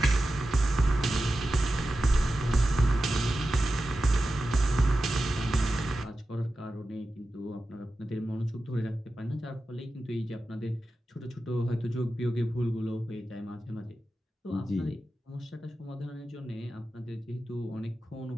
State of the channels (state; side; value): normal; both; correlation 0.92